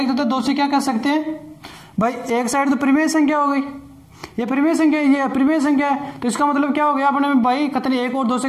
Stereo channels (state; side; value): identical; both; correlation 1.00